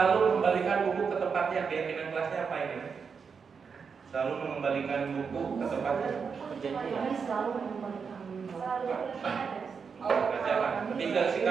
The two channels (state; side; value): quieter; left; 5.9 dB